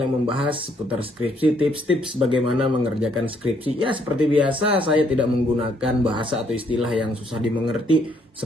yang membahas seputar skripsi, tips-tips bagaimana mengerjakan skripsi. Ya, seperti biasa, saya tidak menggunakan bahasa atau istilah yang susah dimengerti,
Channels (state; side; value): normal; both; correlation 0.69